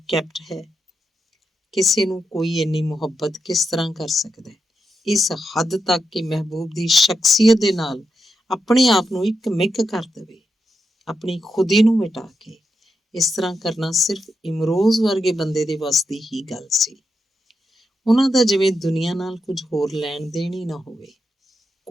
ਕੈਪਟ ਹੈ? ਕਿਸੇ ਨੂੰ ਕੋਈ ਇੰਨੀ ਮੁਹੱਬਤ ਕਿਸ ਤਰ੍ਹਾਂ ਕਰ ਸਕਦਾ ਹੈ, ਇਸ ਹੱਦ ਤੱਕ ਕਿ ਮਹਿਬੂਬ ਦੀ ਸ਼ਖਸੀਅਤ ਦੇ ਨਾਲ ਆਪਣੇ ਆਪ ਨੂੰ ਇੱਕ ਮਿੱਕ ਕਰ ਦੇਵੇ, ਆਪਣੀ ਖੁਦੀ ਨੂੰ ਮਿਟਾ ਕੇ। ਇਸ ਤਰ੍ਹਾਂ ਕਰਨਾ ਸਿਰਫ ਇਮਰੋਜ਼ ਵਰਗੇ ਬੰਦੇ ਦੇ ਵੱਸ ਦੀ ਹੀ ਗੱਲ ਸੀ। ਉਹਨਾਂ ਦਾ ਜਿਵੇਂ ਦੁਨੀਆ ਨਾਲ ਕੁਝ ਹੋਰ ਲੈਣ ਦੇਣ ਹੀ ਨਾ ਹੋਵੇ।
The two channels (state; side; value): normal; both; correlation 0.86